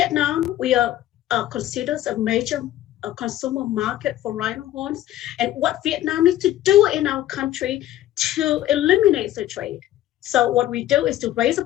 we are considered a major consumer market for rhino horns, and what Vietnam needs to do in our country to eliminate the trade. So what we do is to raise the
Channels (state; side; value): quieter; right; 13.5 dB